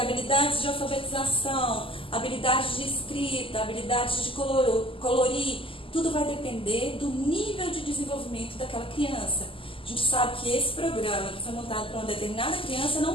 de alfabetização, habilidades de escrita, habilidades de colorir, tudo vai depender do nível de desenvolvimento daquela criança. A gente sabe que esse programa que foi montado para uma determinada criança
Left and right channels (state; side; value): late; right; 0.25 ms